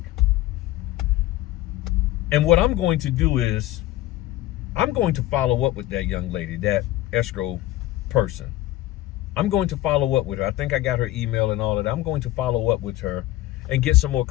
and what I'm going to do is, I'm going to follow up with that young lady, that escrow person. I'm going to follow up with her. I think I got her email and all of that. I'm going to follow up with her and get some more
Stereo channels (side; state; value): right; quieter; 15.8 dB